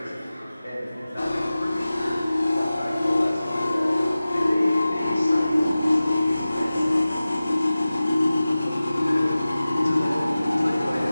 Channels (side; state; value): both; inverted; correlation -0.96